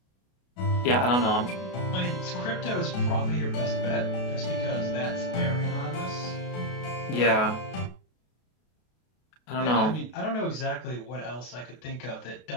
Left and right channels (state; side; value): late; right; 32 ms